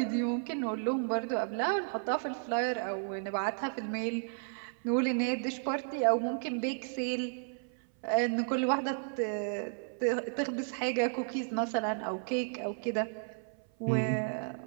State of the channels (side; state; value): left; silent; 56 dB below the other